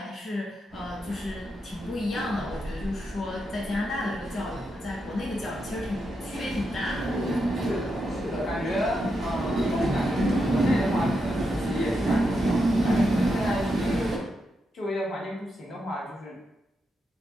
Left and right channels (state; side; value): normal; both; correlation 0.84